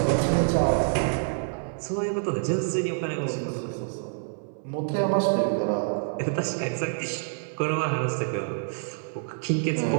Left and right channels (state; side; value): silent; left; digital silence